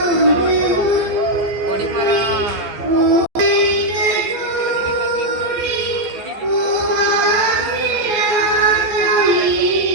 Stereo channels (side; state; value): left; late; 14 ms